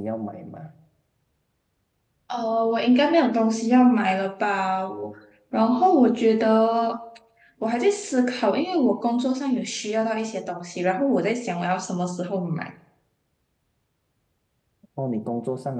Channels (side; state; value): both; identical; correlation 1.00